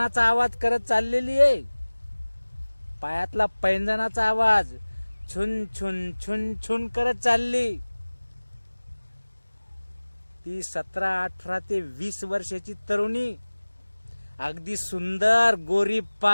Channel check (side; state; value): both; inverted; correlation -1.00